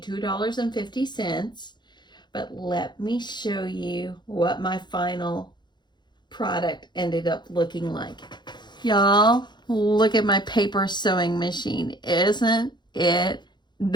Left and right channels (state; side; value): late; right; 0.21 ms